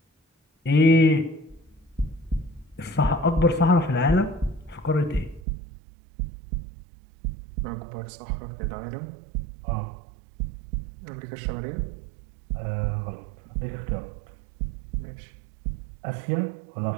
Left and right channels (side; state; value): left; drops out; at 5.4 s